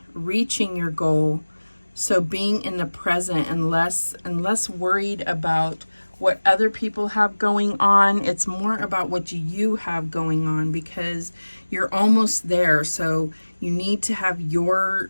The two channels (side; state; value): both; inverted; correlation -1.00